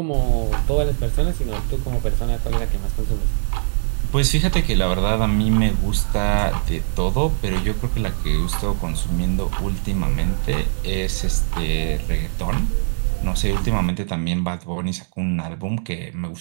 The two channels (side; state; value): left; silent; digital silence